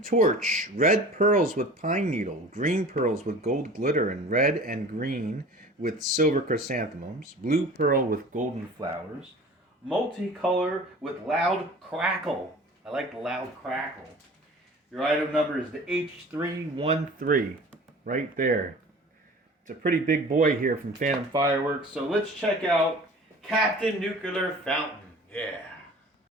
torch, red pearls with pine needle, green pearls with gold glitter, and red and green with silver chrysanthemums, blue pearl with golden flowers, multicolor with loud crackle. I like the loud crackle. Your item number is the H313, right there. It's a pretty big boy here from Phantom Fireworks, so let's check out Captain Nuclear Fountain. Yeah.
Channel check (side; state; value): both; normal; correlation 0.42